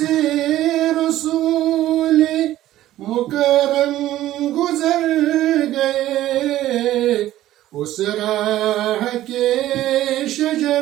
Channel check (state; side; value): quieter; left; 14.2 dB